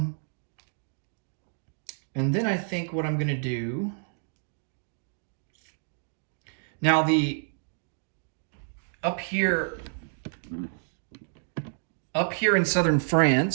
And then I think what I'm going to do... Now, up here in southern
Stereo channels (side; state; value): left; silent; digital silence